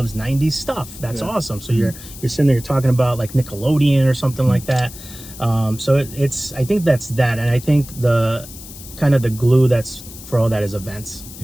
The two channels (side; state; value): left; noise; hiss, 16 dB below the sound